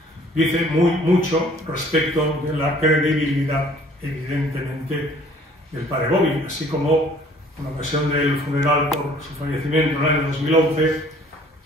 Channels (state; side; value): normal; both; correlation 0.55